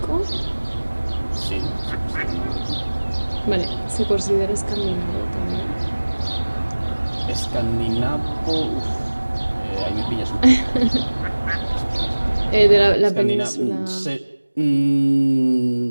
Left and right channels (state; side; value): inverted; both; correlation -1.00